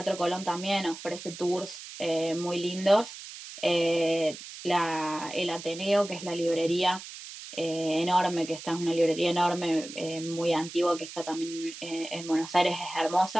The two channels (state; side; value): noise; right; hiss, 13 dB below the sound